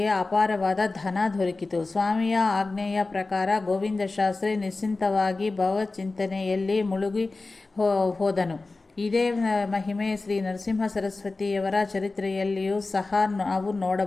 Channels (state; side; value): quieter; right; 3.5 dB